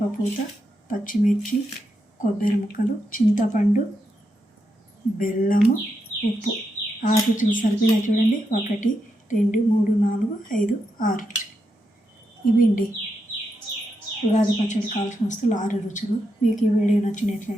పచ్చిమిర్చి, కొబ్బరి ముక్కలు, చింతపండు, బెల్లము, ఉప్పు. 6 రుచులు సరిపోయినా చూడండి. 1 2 3 4 5 6 ఇవి అండి ఉగాది పచ్చడి కావాల్సిన వస్తువులు 6 రుచులు. మీకు ఈ వీడియో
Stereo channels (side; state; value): both; normal; correlation 0.84